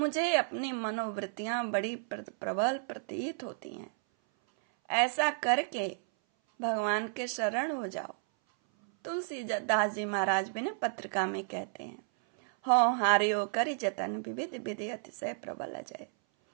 अपनी मनोवृत्तियां बड़ी प्रबल प्रतीत होती हैं। ऐसा करके भगवान के शरण हो जाओ। तुलसीदास जी महाराज भी ने पत्रिका में कहते हैं, हो हारियो कर जतन विविध विधि अतिशय प्रबल अजय।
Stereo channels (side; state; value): left; silent; 56 dB below the other